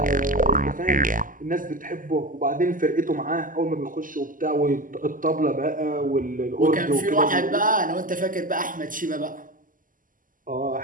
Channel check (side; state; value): left; late; 0.39 ms